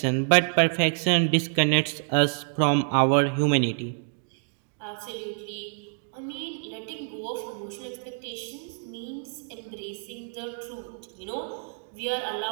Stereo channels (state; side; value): silent; left; 60 dB below the other